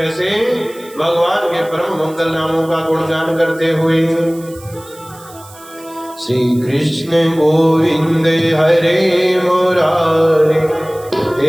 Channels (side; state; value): right; noise; hiss, 22 dB below the sound